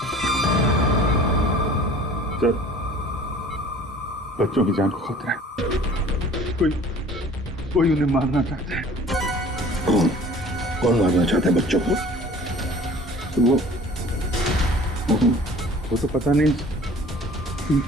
सर, बच्चों की जान को खतरा है। कोई उन्हें मारना चाहता है। कौन मारना चाहता है बच्चों को? वो तो पता नहीं,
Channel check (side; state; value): both; normal; correlation 0.48